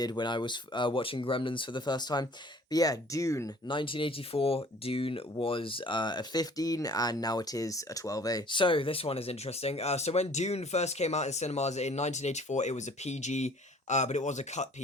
when I was watching Gremlins for the first time. But yeah, Dune, 1984, Dune was a 15, and now it is a 12A. So, this one is interesting. So when Dune first came out in cinemas in 1984, it was a PG, but it was a cut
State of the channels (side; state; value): both; normal; correlation 0.52